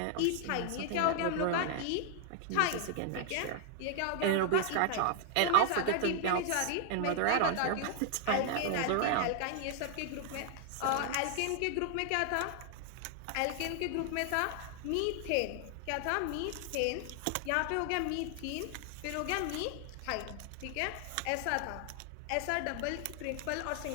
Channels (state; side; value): different; both; correlation 0.00